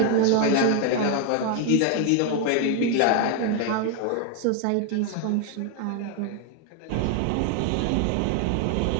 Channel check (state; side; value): different; both; correlation 0.01